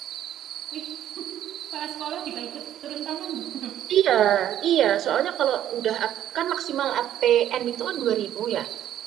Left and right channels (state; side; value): quieter; left; 11.4 dB